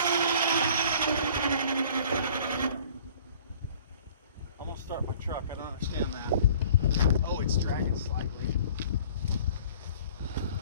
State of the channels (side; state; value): both; inverted; correlation -0.50